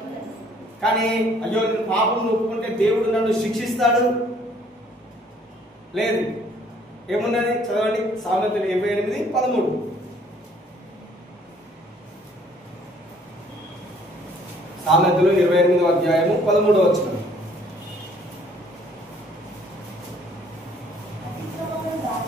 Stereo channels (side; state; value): both; normal; correlation 0.60